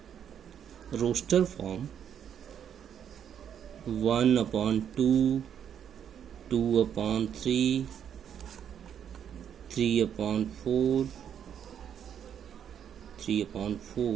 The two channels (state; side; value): quieter; left; 8.8 dB